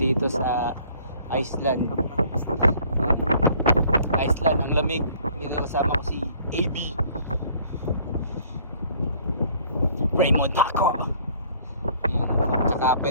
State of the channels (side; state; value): both; inverted; correlation -0.57